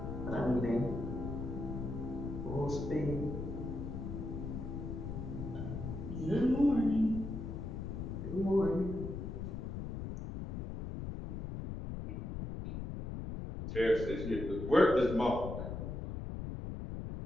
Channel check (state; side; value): noise; left; rumble, 5 dB below the sound